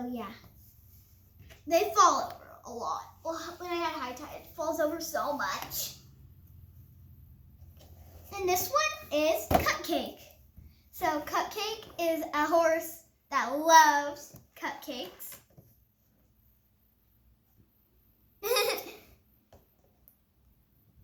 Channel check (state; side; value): identical; both; correlation 1.00